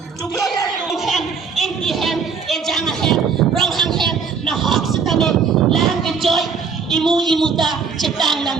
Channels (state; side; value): quieter; left; 5.6 dB